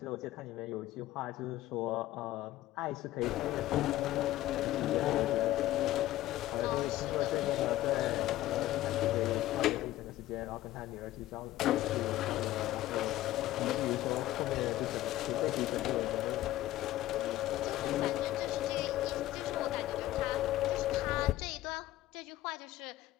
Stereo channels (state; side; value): quieter; right; 15.2 dB